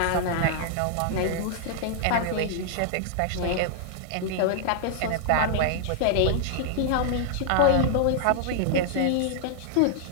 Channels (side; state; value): both; different; correlation -0.01